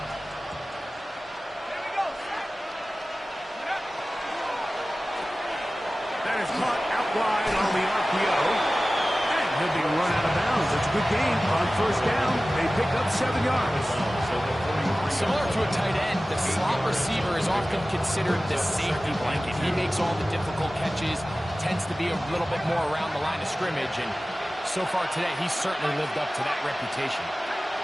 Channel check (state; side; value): normal; both; correlation 0.96